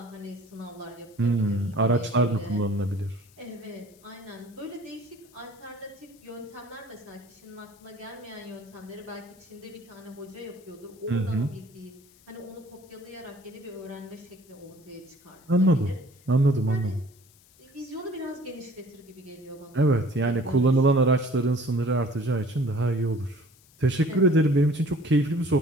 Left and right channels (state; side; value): noise; left; hiss, 28 dB below the sound